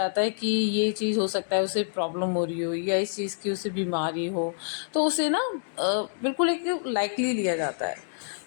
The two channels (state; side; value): silent; right; digital silence